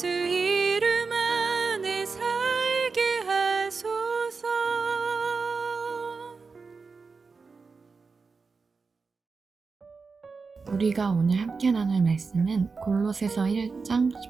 이름 안에 살게 하소서. 우리가 오늘 함께 나눌 말씀은 골로새서 1장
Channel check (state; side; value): quieter; left; 4.6 dB